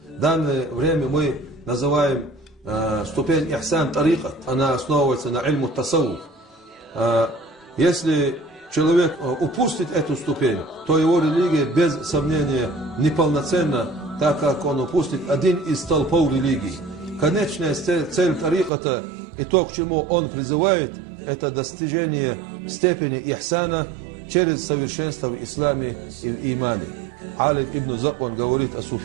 В данное время мы называем ступень ихсан тарикат. Она основывается на ильму тасауф. Если человек упустит эту ступень, то его религия без сомнения неполноценна, так как он упустит один из столпов религии. Конечная цель тариката и то, к чему он призывает, это достижение степени ихсана через совершенство в исламе и в имане. Алим ибн Заб, он говорит о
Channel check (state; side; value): drops out; left; at 18.7 s